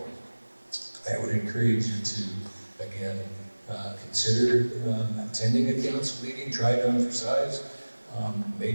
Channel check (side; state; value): both; inverted; correlation -1.00